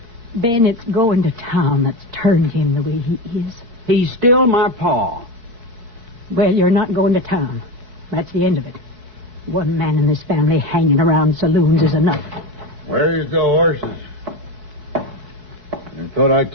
it's going to town that's turned him the way he is. He's still my pa. Well, you're not going to town. That's the end of it. One man in this family hanging around saloons is enough. Where's the horses? I thought I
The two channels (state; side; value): late; left; 4.7 ms